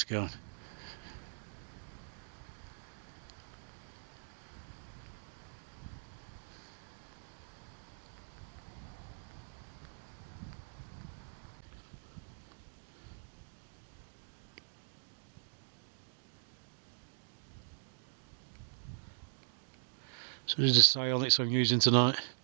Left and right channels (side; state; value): left; silent; digital silence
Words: So this is the Sionyx I'm using tonight.